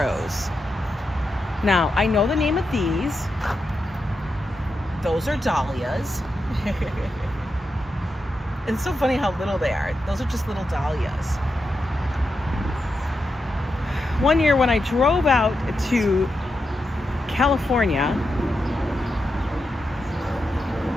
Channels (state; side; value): normal; both; correlation 0.87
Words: Now, I know the name of these. Those are dahlias. It's so funny how little they are. Those are just little dahlias. One year when I drove out to California,